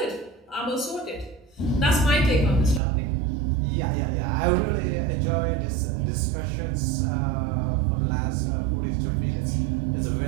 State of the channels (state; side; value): drops out; left; at 2.8 s